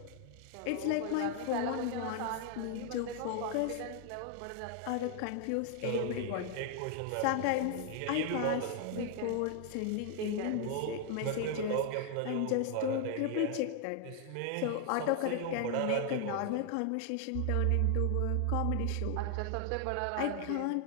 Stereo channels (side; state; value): both; different; correlation 0.00